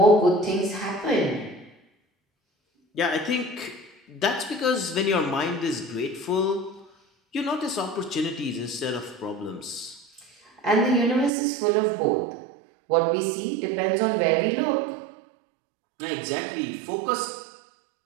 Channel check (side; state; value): left; drops out; at 11.3 s